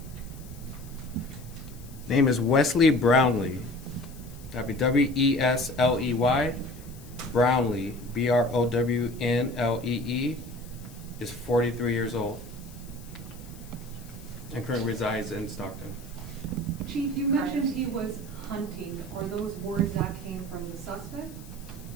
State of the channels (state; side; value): noise; left; hiss, 21 dB below the sound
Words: Name is Wesley Brownlee. That'd be W-E-S-L-E-Y. Brownlee, B-R-O-W-N-L-E-E, is 43 years old and currently resides in Stockton. Chief, you mentioned he was hunting. Are those words that came from the suspect?